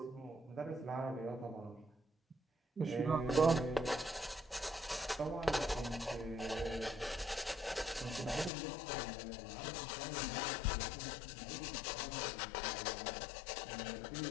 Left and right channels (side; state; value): right; drops out; at 8.5 s